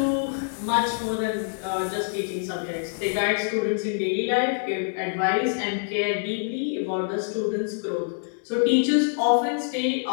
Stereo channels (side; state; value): right; silent; digital silence